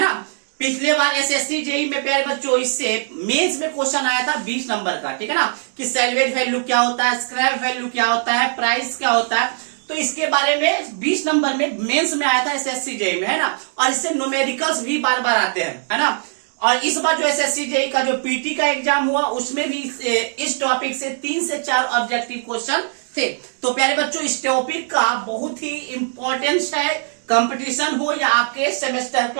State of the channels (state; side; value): silent; left; 65 dB below the other